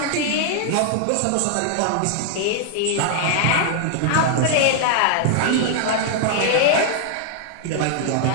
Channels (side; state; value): both; different; correlation -0.01